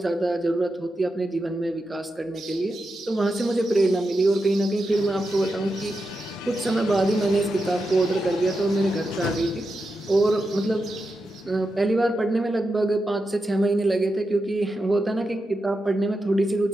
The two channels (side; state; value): both; normal; correlation 0.88